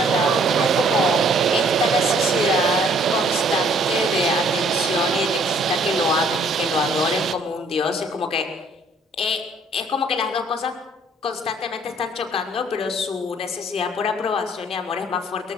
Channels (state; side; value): normal; both; correlation 0.61